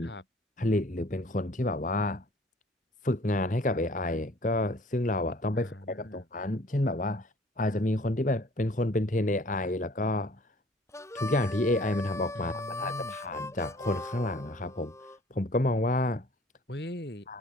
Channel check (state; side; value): normal; both; correlation 0.53